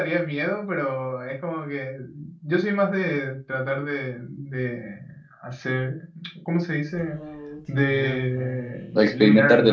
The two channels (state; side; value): identical; both; correlation 1.00